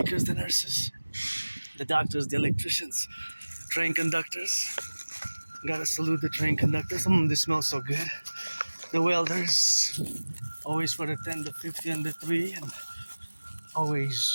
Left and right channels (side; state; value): both; inverted; correlation -1.00